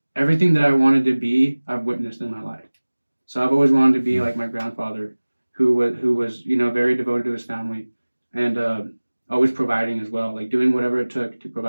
Everything that I wanted to be, I've witnessed in my life. So I've always wanted to be like my grandfather, who was very devoted to his family, and always providing as well, like doing whatever it took to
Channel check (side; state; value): both; inverted; correlation -1.00